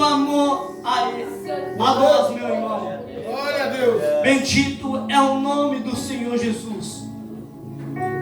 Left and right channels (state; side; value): identical; both; correlation 1.00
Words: amor a Ele, a nós, meu irmão. Glória a Deus! Bendito é o nome do Senhor Jesus.